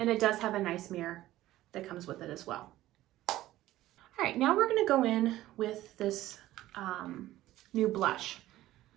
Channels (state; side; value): quieter; left; 15.2 dB